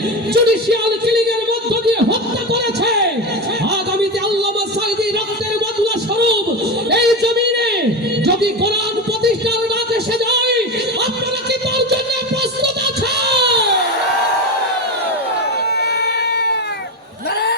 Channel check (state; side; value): normal; both; correlation 0.18